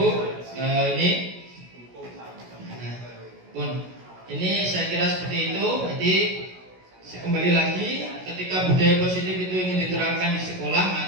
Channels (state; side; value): late; left; 16 ms